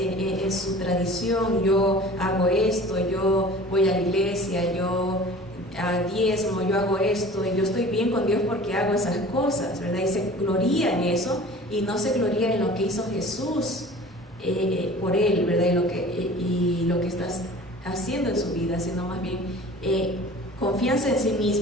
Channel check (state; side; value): normal; both; correlation 0.43